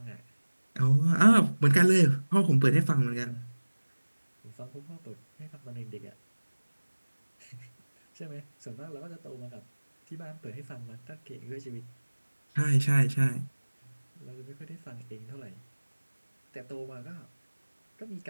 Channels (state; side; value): inverted; both; correlation -1.00